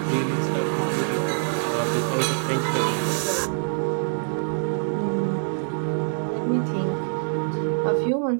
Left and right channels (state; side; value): silent; left; 60 dB below the other